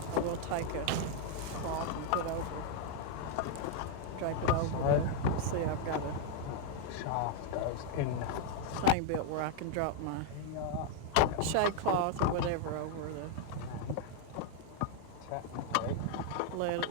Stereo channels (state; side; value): different; both; correlation 0.00